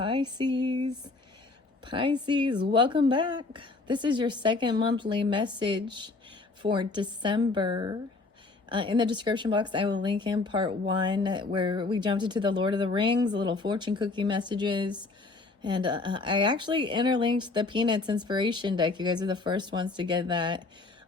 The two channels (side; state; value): right; quieter; 3.6 dB